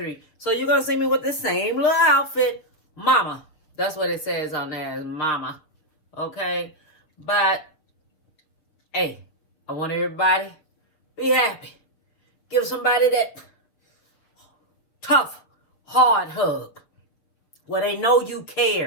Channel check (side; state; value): right; late; 6.8 ms